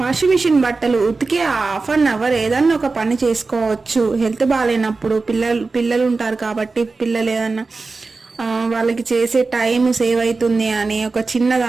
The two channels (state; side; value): quieter; left; 3.9 dB